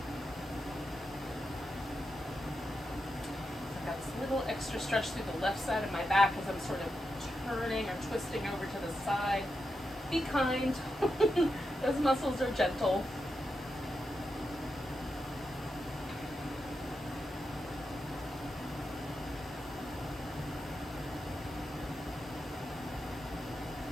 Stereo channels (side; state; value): both; normal; correlation 0.87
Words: Extra stretch through the left side of my back as I'm sort of turning or twisting over to the side. Be kind. Those muscles are gentle.